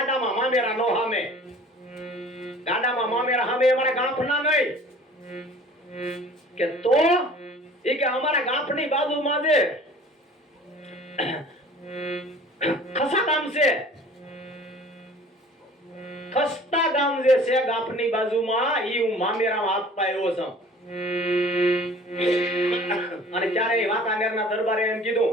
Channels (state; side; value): normal; both; correlation 0.47